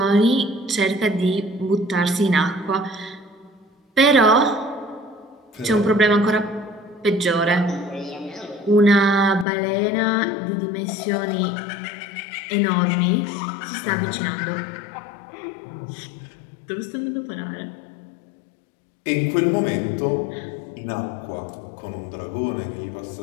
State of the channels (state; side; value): drops out; right; at 9.5 s